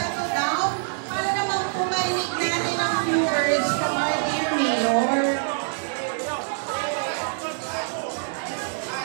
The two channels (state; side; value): silent; left; 62 dB below the other